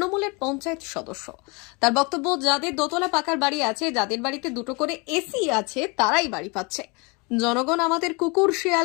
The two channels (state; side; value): quieter; right; 29.3 dB